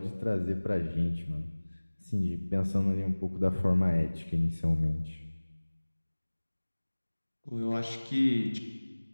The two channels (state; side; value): inverted; both; correlation -1.00